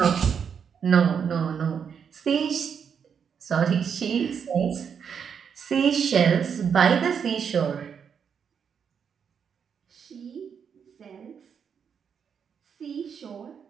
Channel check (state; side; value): quieter; left; 7.1 dB